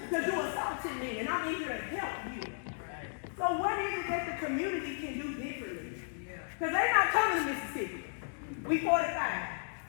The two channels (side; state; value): right; silent; digital silence